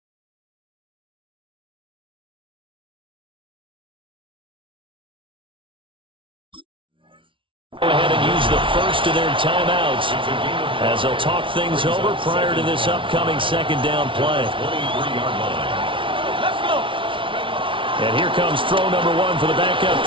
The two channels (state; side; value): late; left; 0.25 ms